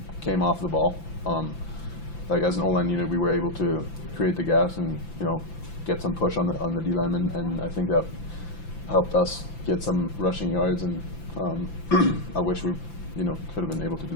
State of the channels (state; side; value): late; right; 5.9 ms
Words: came off the ball, like as an O-line unit, we were able to create the gaps and get some push on the D lineman, and I think that helped us get some rushing yards. And I wish we could have been able to do